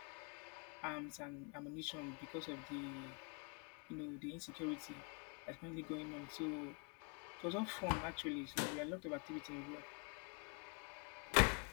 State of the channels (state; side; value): quieter; right; 36.2 dB